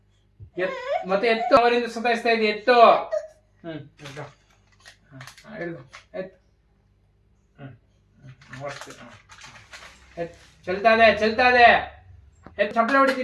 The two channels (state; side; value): identical; both; correlation 1.00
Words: ಮತ್ತೆ ಎತ್ತು, ಅವರಿಂದ ಸತಾಯಿಸ್ತಾ ಇದೆ. ಎತ್ತು. ಎತ್ತು. ಚಲ್ತಾ ಇದೆ. ಎತ್ತು ಚಪ್ಪಲೆ